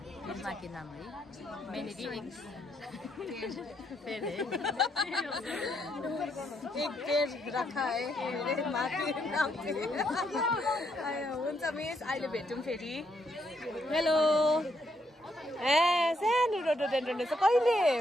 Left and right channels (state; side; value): normal; both; correlation 0.75